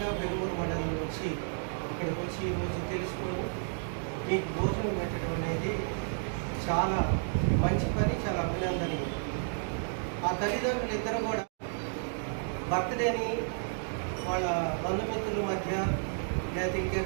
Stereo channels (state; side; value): silent; left; digital silence